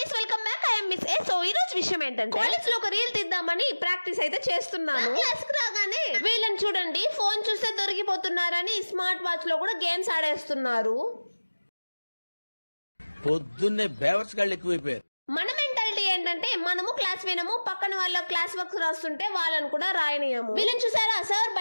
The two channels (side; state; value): both; inverted; correlation -1.00